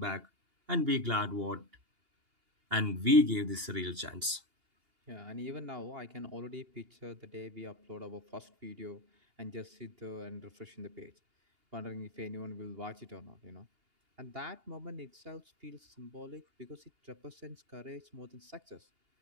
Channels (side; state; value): left; late; 2.8 ms